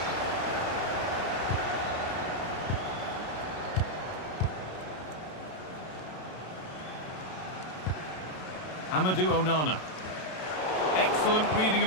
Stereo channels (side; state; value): right; late; 32 ms